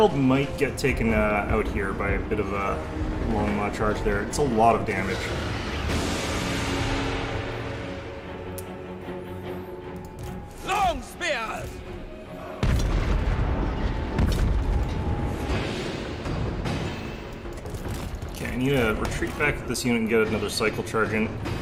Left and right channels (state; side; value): identical; both; correlation 1.00